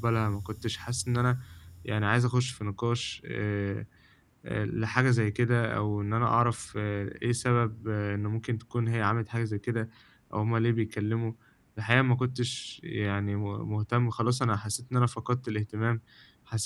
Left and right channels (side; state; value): both; identical; correlation 1.00